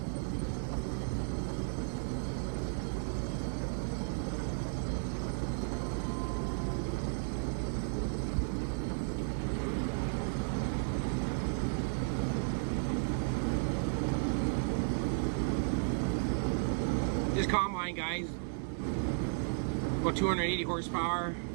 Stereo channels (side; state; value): left; silent; digital silence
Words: This combine, guys, about 280 horsepower.